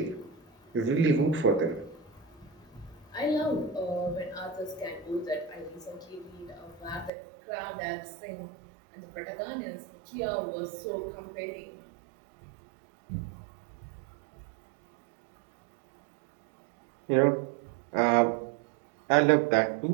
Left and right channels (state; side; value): drops out; left; at 7.1 s